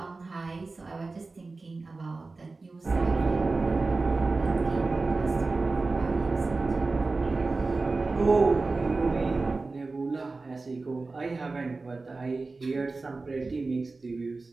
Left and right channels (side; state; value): left; quieter; 3.7 dB